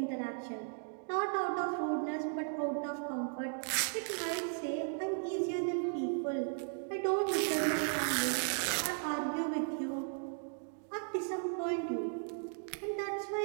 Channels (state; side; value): silent; left; 54 dB below the other